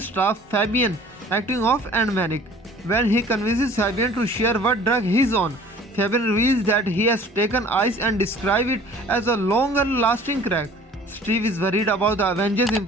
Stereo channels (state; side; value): normal; both; correlation 0.49